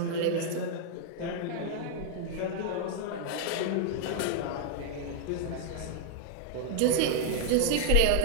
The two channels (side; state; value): both; different; correlation -0.01